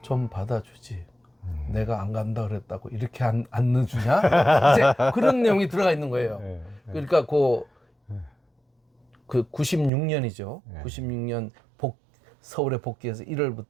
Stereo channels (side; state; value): left; drops out; at 9.9 s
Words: 좀 받아주지. 내가 안 간다 그랬다고 이렇게 안 넣어주냐? 이제 그런 내용이 들어가 있는 거예요. 그러니까 그 96년이죠. 96년 서울에 복귀해서